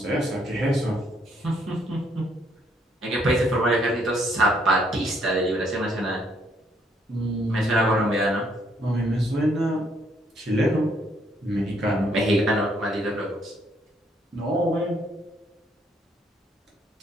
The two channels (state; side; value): normal; both; correlation 0.70